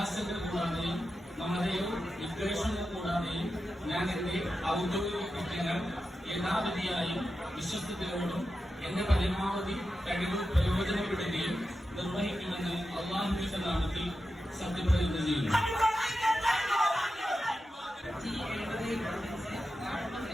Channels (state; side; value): normal; both; correlation 0.90